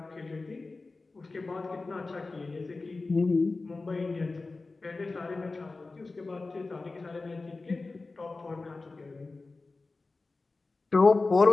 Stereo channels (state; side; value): quieter; right; 3.6 dB